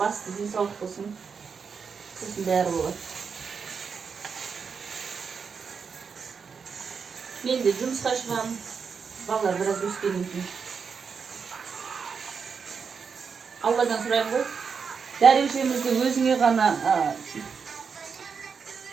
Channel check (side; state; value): left; quieter; 5.9 dB